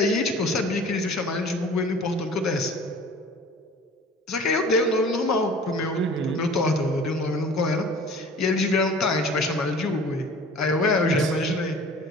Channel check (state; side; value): normal; both; correlation 0.44